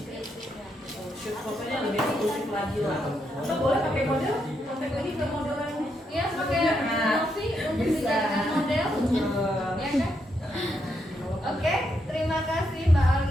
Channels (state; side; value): normal; both; correlation 0.80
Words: Shoot fotonya lebih eksklusif lagi lah. Atau boleh pakai model, kontak lagi ke model lainnya. Ya, pakai Nah, Novi untuk bisa. dijadikan model, ya kan? Oke, terima kasih Mbak